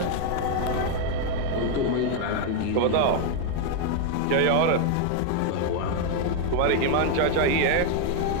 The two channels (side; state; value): both; different; correlation 0.00